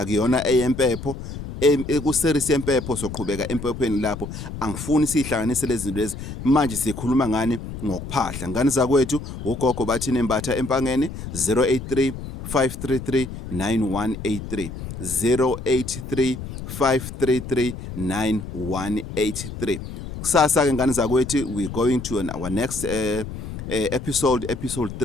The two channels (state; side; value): noise; left; rumble, 9 dB below the sound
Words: eyempepho. Ku-series yempepho soqhubeka empephweni lapho. Angifuni sihlanganise lezi zinto lezi. Manje sikhuluma ngani ngokuphahla. Ngani zakwethu, uGogo Bathini Mbatha empangeni 083 533 9183 083 533 9183. Kusasa ke ngani zakwethu, we going to our next episode